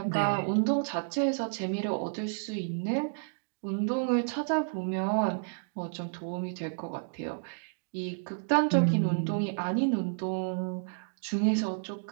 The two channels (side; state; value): left; silent; digital silence